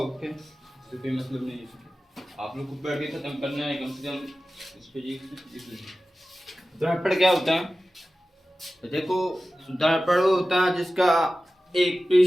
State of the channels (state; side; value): normal; both; correlation 0.95